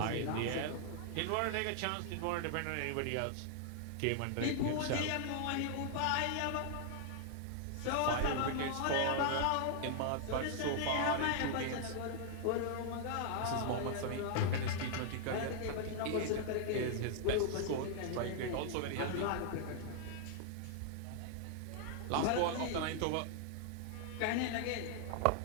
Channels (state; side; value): different; both; correlation -0.01